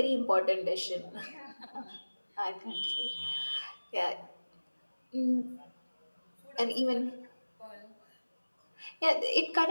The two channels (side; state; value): both; inverted; correlation -1.00